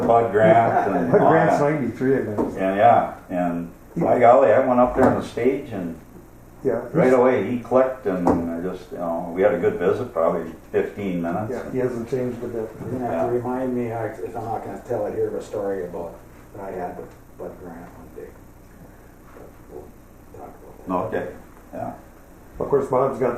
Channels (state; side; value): identical; both; correlation 1.00